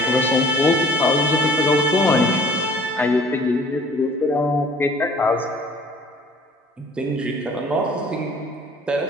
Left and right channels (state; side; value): normal; both; correlation 0.52